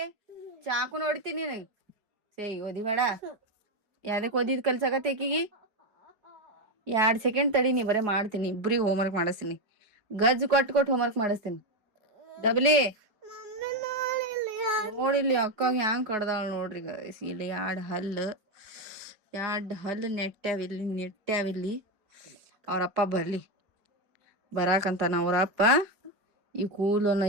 ಚಾಕು ನೋಡ್ತೀನಿ ನಿನಗ್ ಸೇಯ್ ಓದಿಬೇಡ. ಯಾವ್ದಕ್ ಓದಿದ್ ಕಲ್ಸಕತ್ತೆ ಆಕಿಗಿ. 2 ಸೆಕೆಂಡ್ ತಡಿ, ನೀ ಬರೇ ಮಾಡ್ತೀನಿ. ಇಬ್ರಿಗೆ ಹೋಮ್ವರ್ಕ್ ಮಾಡಿಸ್ತೀನಿ. ಗಜ್ಜು ಕೊಟ್ಟು ಹೋಮ್ವರ್ಕ್ ಮಾಡಿಸ್ತೀನಿ. ಡಬ್ಲಿ ನೋಡಿಲ್ಲಿ ಅಕ್ಕಾಗ ಹ್ಯಾಂಗ್ ಕಡ್ದಾಳ ನೋಡ್ರಿ ಗೈಸ್. ಇಲ್ಲಿ 2 ಹಲ್ಲು ನೆಟ್ಟಾವಿಲ್ಲಿ. ಅವ್ರಪ್ಪ ಬರಾಕಂತಾನ ಅವ್ರಪ್ಪ. ಈ ಕೂಲನ್ನ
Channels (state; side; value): late; left; 4.8 ms